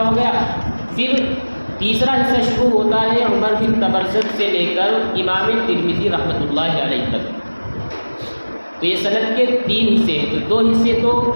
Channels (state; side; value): inverted; both; correlation -1.00